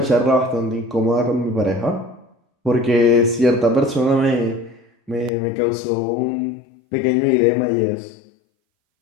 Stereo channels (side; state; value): right; drops out; at 5.3 s